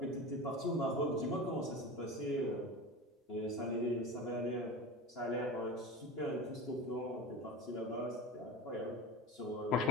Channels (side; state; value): both; normal; correlation 0.31